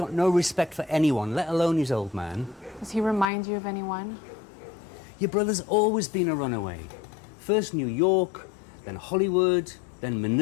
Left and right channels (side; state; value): right; drops out; at 3.2 s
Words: no respect for anyone, let alone his old man. Does he remind you of anyone? Your brother's always been a runaway. First New York, then Hollywood, then